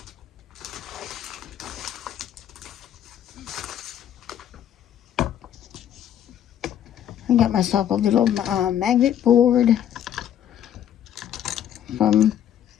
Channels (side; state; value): right; quieter; 10.3 dB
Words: I got myself a little magnet board from